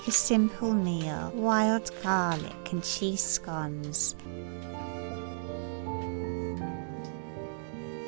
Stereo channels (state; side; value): silent; left; digital silence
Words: a simple meal: wild garlic and cheese scones.